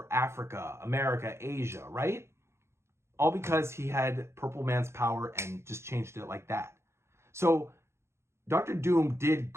Africa, America, Asia, right? All because he had Purple Man's power and just changed it like that. So Dr. Doom did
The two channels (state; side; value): late; left; 0.13 ms